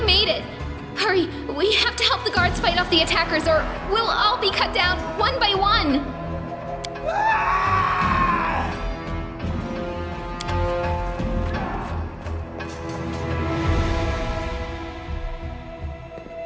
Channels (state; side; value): identical; both; correlation 1.00